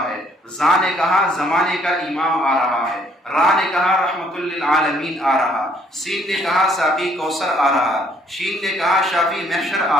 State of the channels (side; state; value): both; normal; correlation 0.64